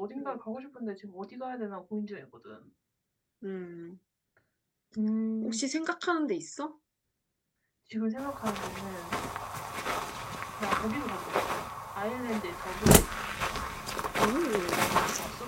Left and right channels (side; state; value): both; identical; correlation 1.00